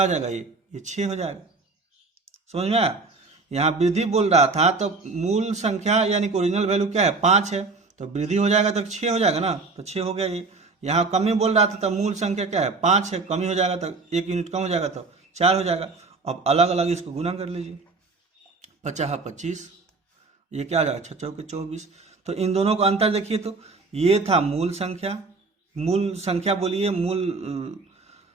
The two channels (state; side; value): quieter; left; 4.0 dB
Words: हो जाएगा ये 6 हो जाएगा, समझ में आया। यहाँ वृद्धि बोल रहा था तो मूल संख्या यानी कि ओरिजिनल वैल्यू क्या है 5 है, तो वृद्धि हो जाएगा तो 6 हो जाएगा ना, तो 6 हो गया ये। यहाँ कमी बोल रहा था तो मूल संख्या क्या है 5 है, कमी हो जाएगा तो 1 यूनिट कम हो जाएगा तो 4 हो जाएगा, अब अलग अलग इसको गुना कर लीजिए, 50 25, ये क्या आ जाएगा 6 चौके 24। तो इन दोनों का अंतर देखिए, तो ये था मूल संख्या बोलिए,